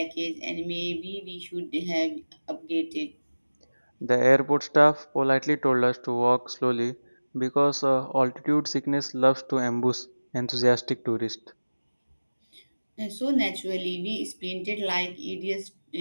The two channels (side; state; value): both; inverted; correlation -1.00